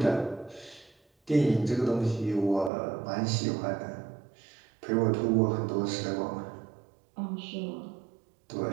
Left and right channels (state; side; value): drops out; left; at 2.7 s